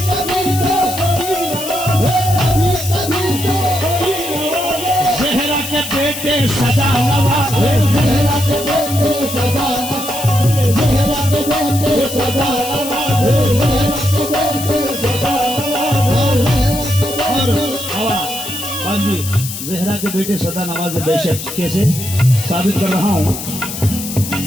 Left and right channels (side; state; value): left; noise; hiss, 8 dB below the sound